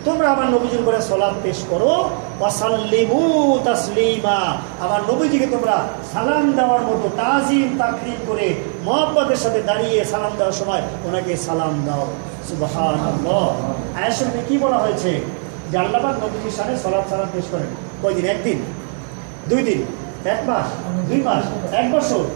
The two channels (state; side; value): silent; left; 56 dB below the other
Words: তোমরা আমার নবীজির উপরে সালাত পেশ করো। ওয়াসাল্লিমু তাসলিমা, আমার নবীজিকে তোমরা সালাম দেওয়ার মতো তাজিম তাকরীম করে মহব্বতের সাথে দাঁড়িয়ে সালাম দেওয়ার সময় ওনাকে সালাম দাও। সুবহানাল্লাহ। আয়াত শরীফে কি বলা হয়েছে? যে আল্লাহ পাক নবীজির শানে সালাত সালাম পেশ করেন কয়দিন? একদিন, 2 দিন, 1 মাস, 2 মাস, 1 বছর,